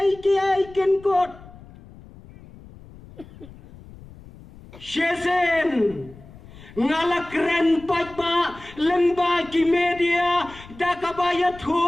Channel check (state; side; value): noise; left; rumble, 20 dB below the sound